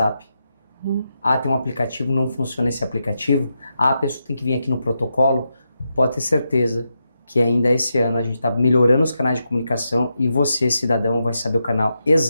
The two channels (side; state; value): both; inverted; correlation -0.85